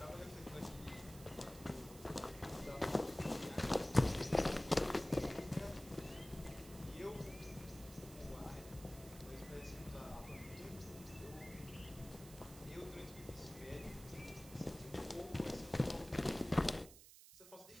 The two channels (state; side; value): noise; right; hiss, 17 dB below the sound